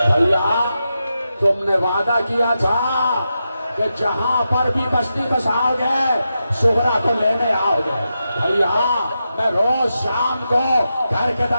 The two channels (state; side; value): inverted; both; correlation -0.88